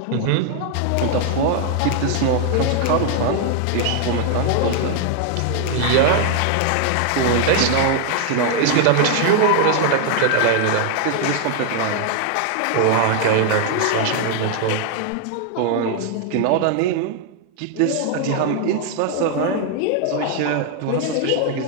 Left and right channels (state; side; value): different; both; correlation 0.00